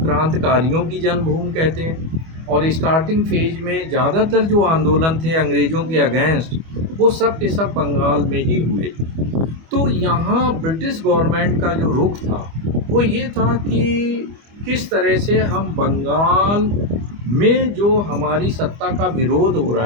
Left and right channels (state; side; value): late; left; 25 ms